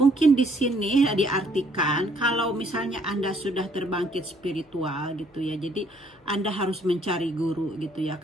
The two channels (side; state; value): both; normal; correlation 0.64